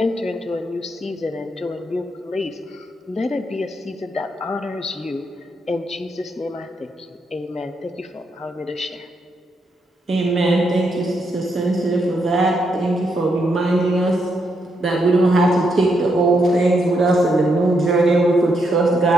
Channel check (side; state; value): both; normal; correlation 0.79